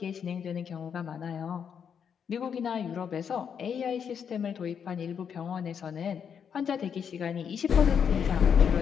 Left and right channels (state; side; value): quieter; right; 7.4 dB